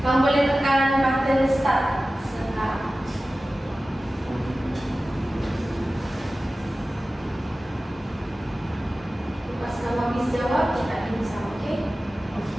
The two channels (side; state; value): both; normal; correlation 0.96